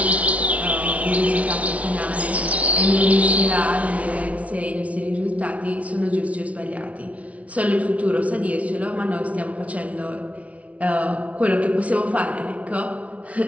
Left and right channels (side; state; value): left; late; 0.066 ms